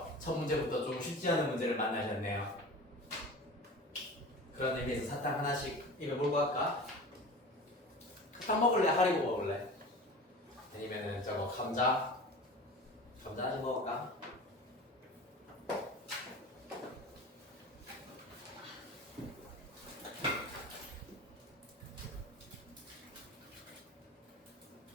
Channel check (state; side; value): normal; both; correlation 0.35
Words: 첫 문제부터 좀 쉽지 않은 문제를 만나셨네요. 그런 의미에서 사탕 하나씩 입에 몰고 갈까? 탕 먹을래? 하리보 먹을래? 아니면은 저거 감자 좀 먹을까?